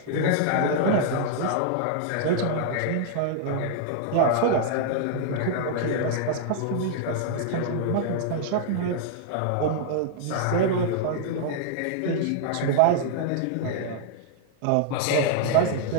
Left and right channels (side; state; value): both; different; correlation -0.01